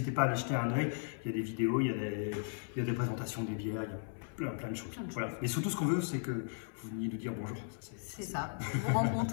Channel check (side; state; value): right; silent; 54 dB below the other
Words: pas à aller jeter un œil. Il y a des vidéos, il y a des présentations des bières, il y a plein de choses. Voilà. Et surtout, ce qu'on veut, c'est que vous veniez nous dire bonjour. C'est ça. Vous